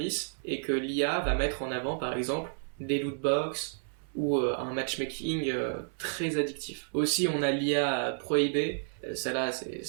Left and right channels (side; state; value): left; silent; 57 dB below the other